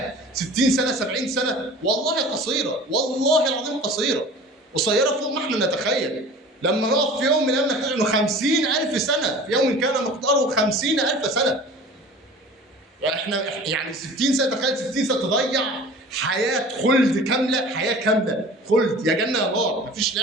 60 سنه 70 سنه والله قصيره، والله العظيم قصيره فوق ما احنا نتخيل. لما نقف في يوم من الايام نكتشف انه 50,000 سنه، في يوم كان مقداره 50,000 سنه. يعني 60 سنه، تخيل 60 سنه تضيع حياه خلد كامله، حياه كامله خلد، يا جنه يا نار، مفيش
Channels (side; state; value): both; normal; correlation 0.42